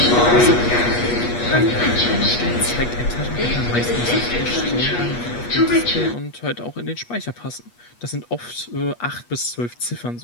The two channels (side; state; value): right; late; 8.3 ms